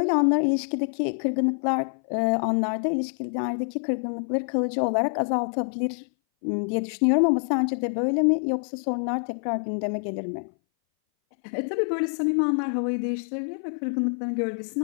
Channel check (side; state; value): right; silent; 59 dB below the other